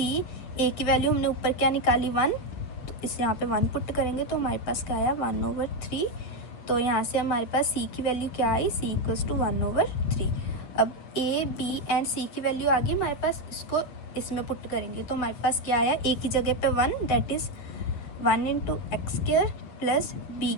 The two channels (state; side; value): late; right; 8.2 ms